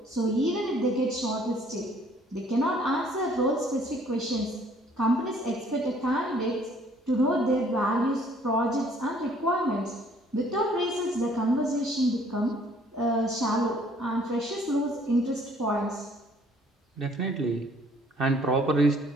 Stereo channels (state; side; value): normal; both; correlation 0.59